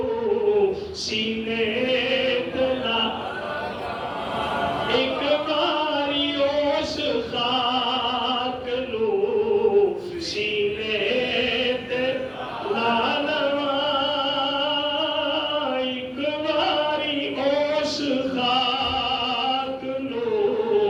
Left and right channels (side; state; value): both; identical; correlation 1.00